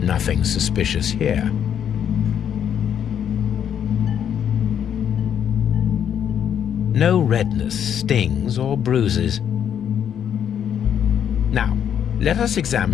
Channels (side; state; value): right; quieter; 8.9 dB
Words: suspicious here. No redness, stings, or bruises. Now, let us